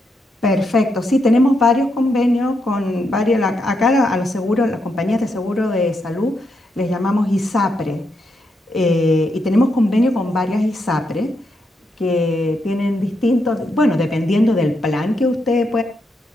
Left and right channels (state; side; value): normal; both; correlation 0.81